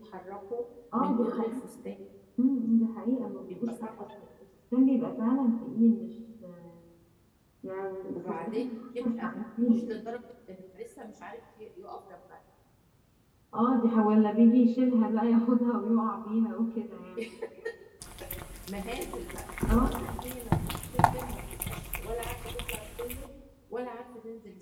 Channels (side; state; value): both; identical; correlation 1.00